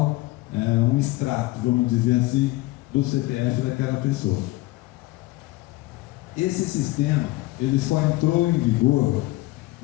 é um extrato, vamos dizer assim, do CPF daquela pessoa. Esse sistema, ele só entrou em vigor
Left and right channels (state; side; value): quieter; right; 19.3 dB